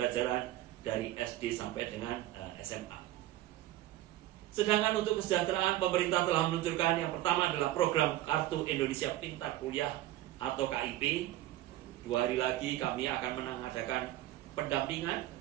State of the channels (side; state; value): left; quieter; 15.1 dB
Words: dari SD sampai dengan SMA. Sedangkan untuk kesejahteraan, pemerintah telah meluncurkan yang pertama adalah program Kartu Indonesia Pintar Kuliah atau KIP. 2 hari lagi kami akan mengadakan pendampingan